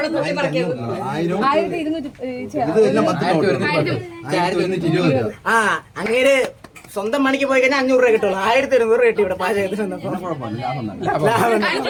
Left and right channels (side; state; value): both; identical; correlation 1.00